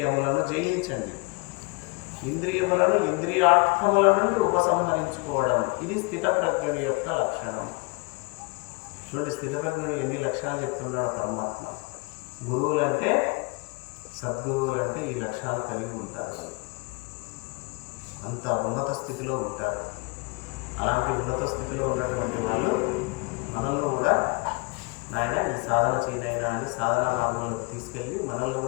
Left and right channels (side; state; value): right; quieter; 29.4 dB